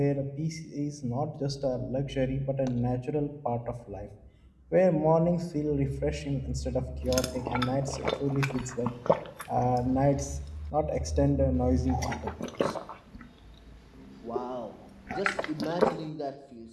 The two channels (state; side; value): identical; both; correlation 1.00